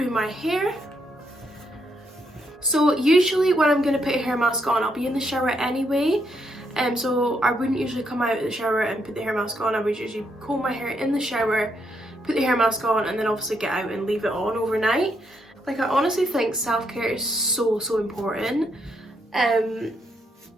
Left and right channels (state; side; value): normal; both; correlation 0.77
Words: my hair. So usually when I'm gonna put a hair mask on, I'll be in the shower anyway. So I wouldn't usually come out of the shower and put the hair mask on. I would usually comb my hair in the shower, put the hair mask on, and then obviously get out and leave it on overnight. Like, I honestly think self-care is so important.